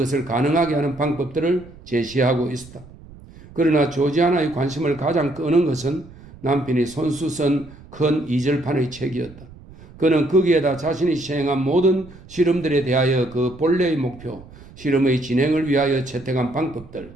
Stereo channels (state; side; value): noise; right; rumble, 20 dB below the sound